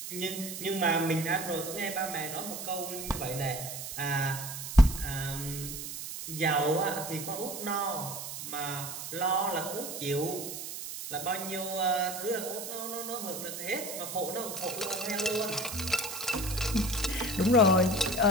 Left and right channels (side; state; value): right; noise; hiss, 7 dB below the sound